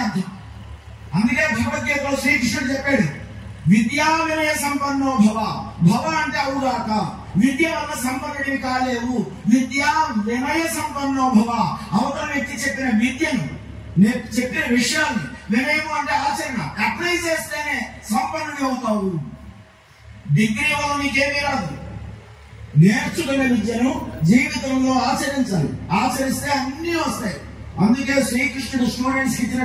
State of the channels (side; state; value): both; identical; correlation 1.00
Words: అర్థం. అందుకే భగవద్గీతలో శ్రీకృష్ణుడు చెప్పాడు, విద్యా వినయ సంపన్నో భవ. భవ అంటే అవుగాక, విద్య వల్ల సంపన్నుడివి కాలేవు. విద్యా వినయ సంపన్నో భవ. అవతల వ్యక్తి చెప్పిన విద్యను, చెప్పిన విషయాన్ని, వినయము అంటే ఆచరణ, అప్లై చేస్తేనే సంపన్నుడి అవుతావు. డిగ్రీ వల్ల నీకేమీ రాదు. నేర్చుకునే విద్యను జీవితంలో ఆచరించాలి. ఆచరిస్తే అన్నీ వస్తాయి. అందుకే శ్రీకృష్ణుడు స్టూడెంట్స్ కి